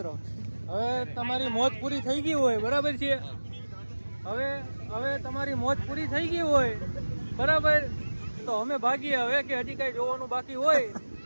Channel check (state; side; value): inverted; both; correlation -1.00